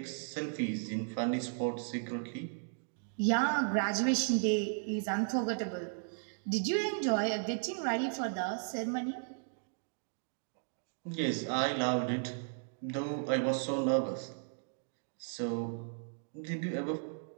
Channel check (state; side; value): silent; left; digital silence